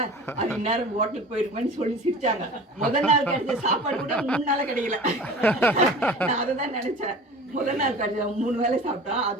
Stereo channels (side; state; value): both; normal; correlation 0.39